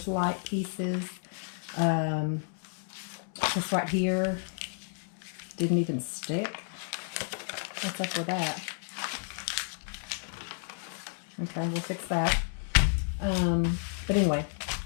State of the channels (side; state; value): right; silent; 57 dB below the other